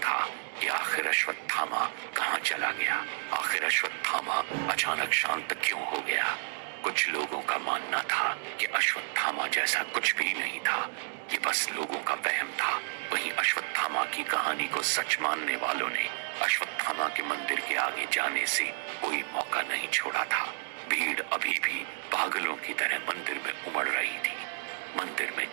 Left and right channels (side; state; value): left; silent; 57 dB below the other